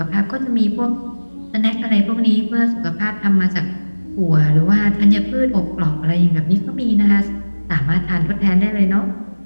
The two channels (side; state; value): both; inverted; correlation -1.00